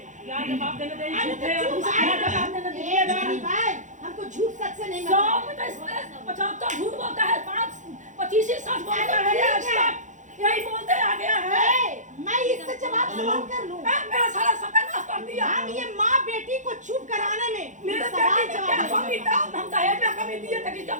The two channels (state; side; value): late; left; 0.36 ms